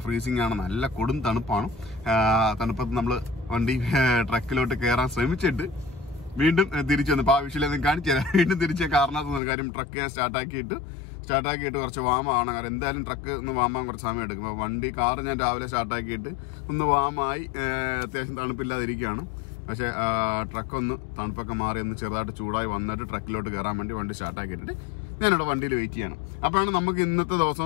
ഫ്രീസിംഗ് ആണ്, നല്ല കൊടും തണുപ്പാണ്. തണുപ്പത്ത് നമ്മൾ വണ്ടി ട്രക്കിലോട്ട് കയറാൻ ശ്രമിച്ചിട്ട് വീണ്ടും തിരിച്ചു വന്നു. അപ്പോൾ ആ വിഷയം കാണിച്ചു തരാം. വീണ്ടും തിരിച്ച കാരണത്ത് കാര്യം ട്രക്ക് ഞാൻ സ്റ്റാർട്ടാക്കിയിട്ട് കുറച്ച് വാമാണ്. കാരണം എന്തായാലും ട്രക്ക് ഒന്ന് വാമാൻ കുറച്ച് സമയം എടുക്കും. അപ്പോൾ കാറ് ഞാൻ രാവിലെ സ്റ്റാർട്ടാക്കിയിട്ട് ഒന്ന് വാമായി അത്യാവശ്യം തണുപ്പില്ലാതിരിക്കുകയാണ്. പക്ഷേ ട്രക്കൊന്ന് തണുപ്പൊക്കെ മാറി ഒന്ന് ചെറുതായിട്ട് ചൂടായി വന്നിട്ട് ട്രക്കിലോട്ട് കയറാൻ വേണ്ടി വണ്ടി സ്റ്റാർട്ടാക്കിയിട്ടിട്ട് ഞാനിവിടെ വണ്ടിയിൽ വെയിറ്റ് ചെയ്യണം. അപ്പോഴാണ് നമുക്ക് ഇന്നത്തെ ദിവസം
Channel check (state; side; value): drops out; right; at 9.4 s